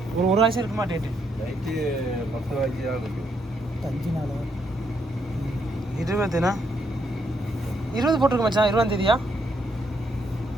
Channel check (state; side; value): normal; both; correlation 0.75